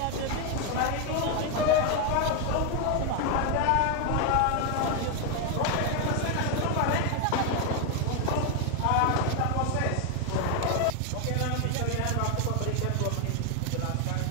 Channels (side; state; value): both; different; correlation 0.01